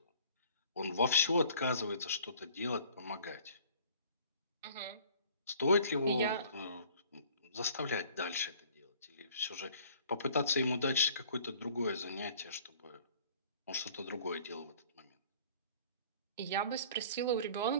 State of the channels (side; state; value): both; inverted; correlation -0.52